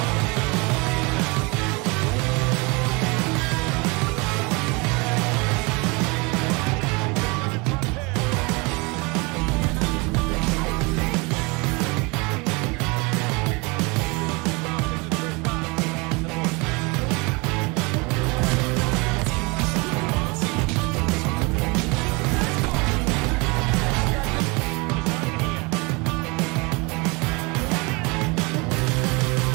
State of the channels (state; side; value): quieter; left; 27.7 dB